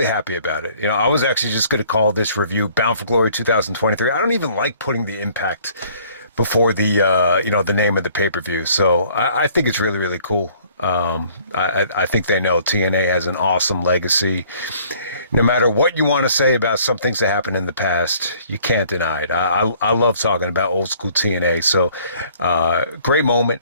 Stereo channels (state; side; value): inverted; both; correlation -0.58